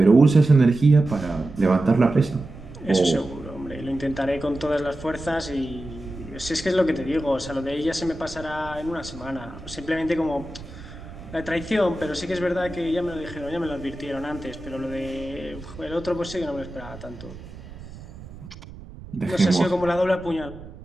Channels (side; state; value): right; noise; rumble, 15 dB below the sound